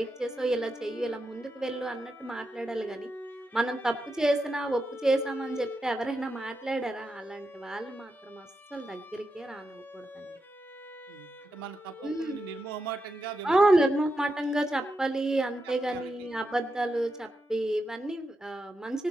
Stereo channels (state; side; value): normal; both; correlation 0.86